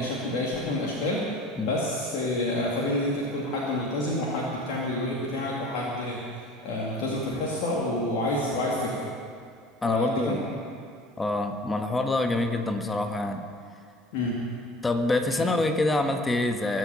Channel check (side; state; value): both; normal; correlation 0.44